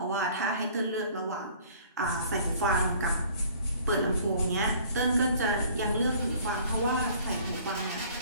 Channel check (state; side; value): inverted; both; correlation -0.53